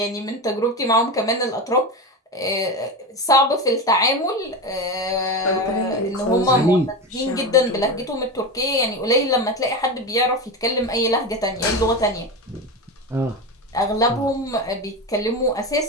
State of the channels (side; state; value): both; normal; correlation 0.21